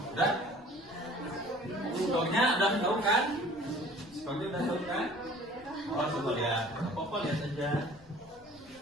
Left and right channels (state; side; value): noise; left; rumble, 27 dB below the sound